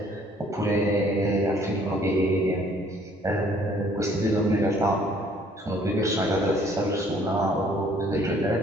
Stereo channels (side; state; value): both; normal; correlation 0.60